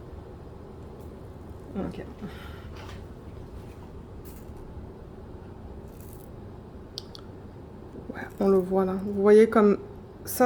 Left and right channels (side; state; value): both; identical; correlation 1.00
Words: Ok. Ouais, on le voit là. Vous voyez comme